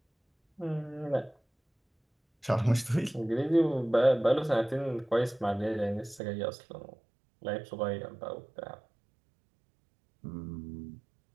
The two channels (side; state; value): left; drops out; at 6.2 s